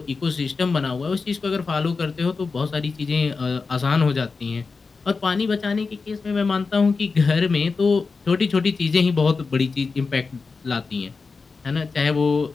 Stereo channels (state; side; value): quieter; right; 4.5 dB